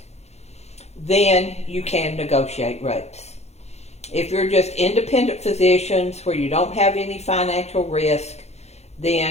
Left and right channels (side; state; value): right; late; 0.31 ms